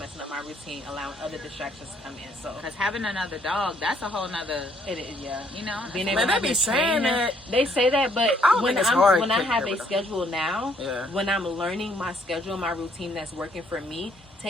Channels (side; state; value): both; normal; correlation 0.67